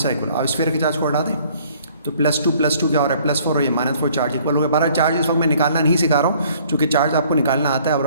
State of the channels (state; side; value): inverted; both; correlation -0.58